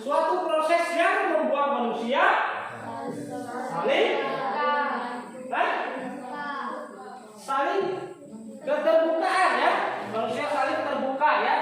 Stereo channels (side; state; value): both; identical; correlation 1.00